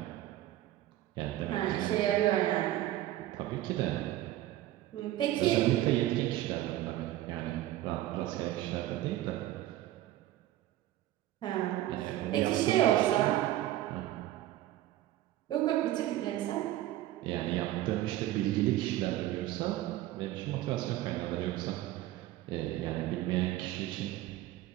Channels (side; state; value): left; quieter; 14.7 dB